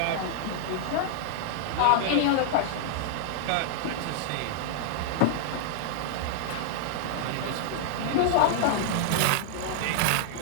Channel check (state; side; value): different; both; correlation -0.01